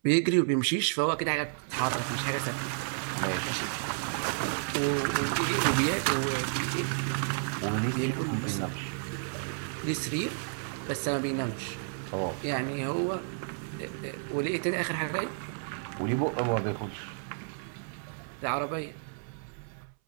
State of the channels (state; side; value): silent; left; 57 dB below the other